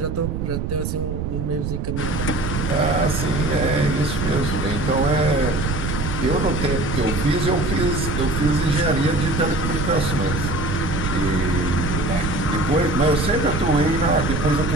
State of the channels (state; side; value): noise; right; rumble, 3 dB below the sound